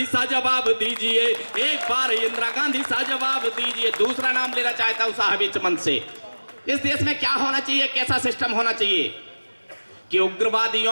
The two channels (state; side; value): inverted; both; correlation -1.00